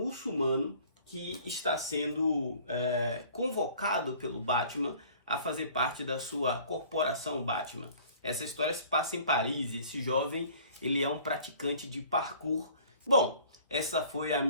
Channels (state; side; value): inverted; both; correlation -0.51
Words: que está sendo convocado pelo Batman a fazer parte da sua corporação Batman. Essa história se passa em Paris. Esse jovem, ele é um praticante de parkour. Bom, essa foi a